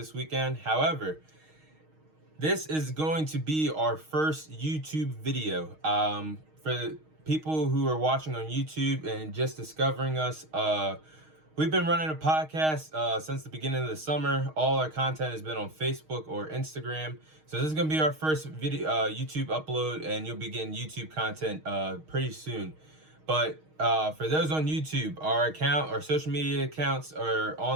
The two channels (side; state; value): left; late; 6.4 ms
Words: weekend. However, this is going to be our first YouTube video. For the people who are watching on YouTube and just discovering us, we've been running a podcast since the beginning of the summer. All our content has been on Facebook or Instagram. So this is going to be our first video YouTube upload, and you'll be getting YouTube content pretty soon. But for those on YouTube, our social media accounts are